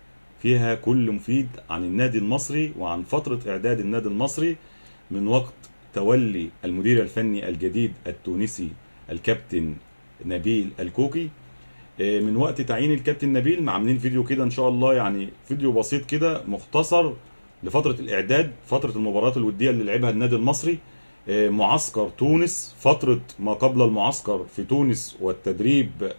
فيها كل مفيد عن النادي المصري وعن فترة إعداد النادي المصري من وقت تولي المدير الفني الجديد التونسي الكابتن نبيل الكوكي. من وقت تعيين الكابتن نبيل عاملين فيديو كده إن شاء الله، يعني فيديو بسيط كده مختصر لفترة الإعداد، فترة المباريات الودية اللي لعبها النادي المصري، معسكر تونس، فترة ما قبل المعسكر في تونس والتدريب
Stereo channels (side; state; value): both; inverted; correlation -1.00